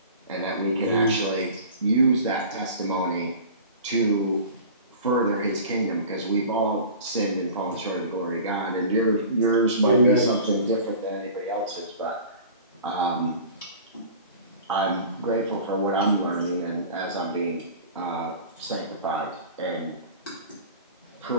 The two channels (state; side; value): inverted; both; correlation -0.39